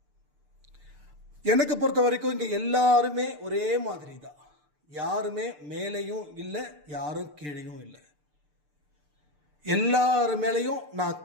எனக்கு பொறுத்த வரைக்கும் இங்கே எல்லாருமே ஒரே மாதிரி தான். யாருமே மேலேயும் இல்லை, யாரும் கீழேயும் இல்லை. எல்லார் மேலேயும் நான்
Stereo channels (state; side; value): late; left; 6.7 ms